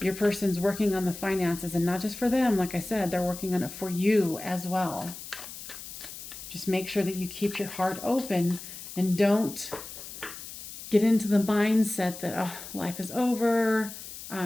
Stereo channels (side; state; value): left; noise; hiss, 12 dB below the sound